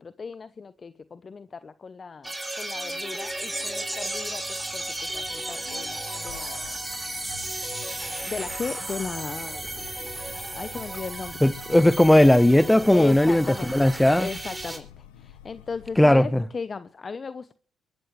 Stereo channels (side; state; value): both; normal; correlation 0.98